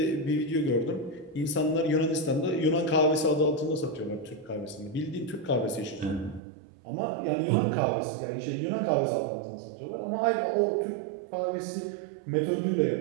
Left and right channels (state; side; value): drops out; left; at 6.4 s